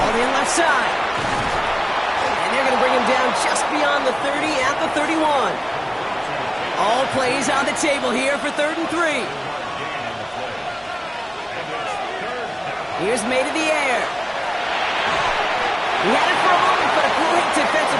in left side. And they're going to bring him down just beyond the 30 at the 31. All plays on the table here for third and 3. Here's May to the air. He had it for a moment, but a great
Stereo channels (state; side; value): identical; both; correlation 1.00